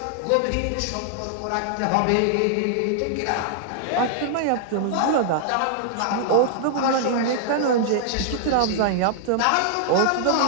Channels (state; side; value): different; both; correlation -0.01